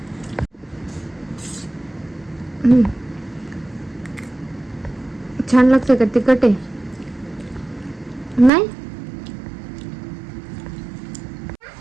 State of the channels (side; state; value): left; drops out; at 8.5 s